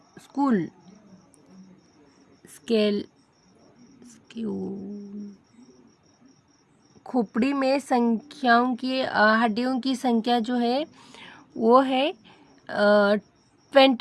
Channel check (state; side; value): identical; both; correlation 1.00